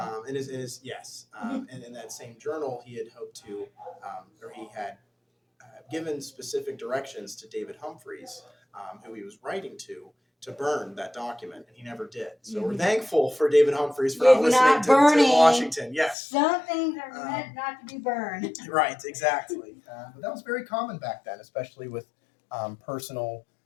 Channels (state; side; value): drops out; right; at 16.2 s